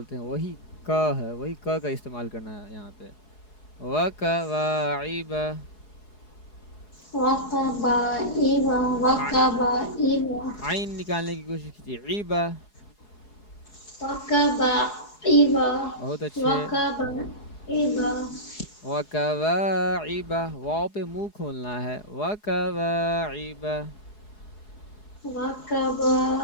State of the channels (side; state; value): right; late; 4.8 ms